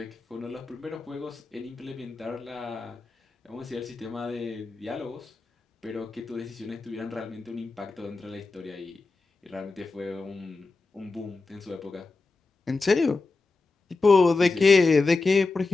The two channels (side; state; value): right; quieter; 3.8 dB